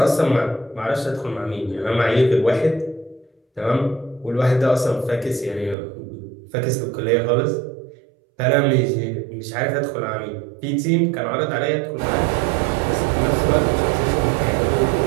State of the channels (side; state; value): left; drops out; at 5.8 s